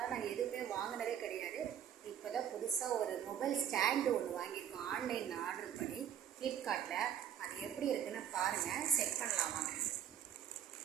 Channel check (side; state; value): left; quieter; 9.5 dB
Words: நாங்கள் எதுவுமே வாங்கினதே கிடையாது. இப்போ தான் புதுசாக ஒரு மொபைல் ஸ்டாண்டு ஒன்று வாங்கியிருக்கோம். ஆன்லைனில் ஆர்டர் பண்ணி ஃப்ளிப்கார்ட்டில். அது எப்படி இருக்குன்னு பாருங்கள், செக் பண்ணலாம் வாங்க.